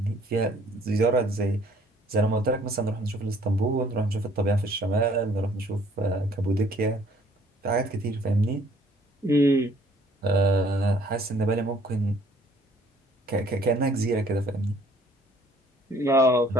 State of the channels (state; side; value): normal; both; correlation 0.59